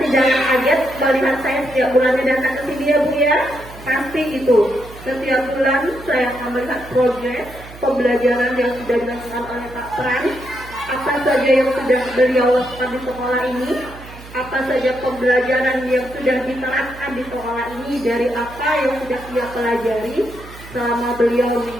jangan kaget melihat saya setiap bulannya datang ke sini ya Bu ya. Pasti itu. Setiap bulan saya akan melihat progres pembelajaran yang sudah dilakukan oleh Pak Pran. Apa saja yang sudah beliau lakukan di sekolah ini, apa saja pembelajaran yang sudah diterapkan di sekolah ini, dari apa yang sudah dia pelajari selama beliau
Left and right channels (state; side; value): noise; right; hum, 17 dB below the sound